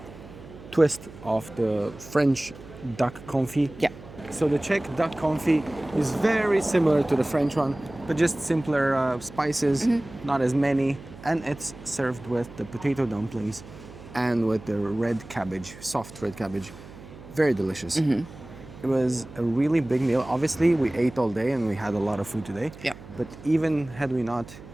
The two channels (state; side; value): noise; right; hum, 17 dB below the sound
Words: twist of the French duck confit. Yeah. So the Czech duck confit is very similar to the French one, but just simpler spices, not as many, and it's served with the potato dumplings and with the red cabbage, soft red cabbage. Very delicious. It was a really big meal. Obviously, we ate all day and we had a lot of food today. Yeah. But even had we not,